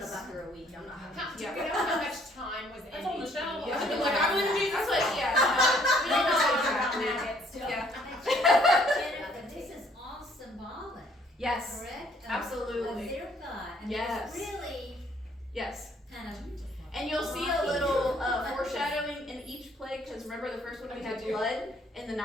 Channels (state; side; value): normal; both; correlation 0.63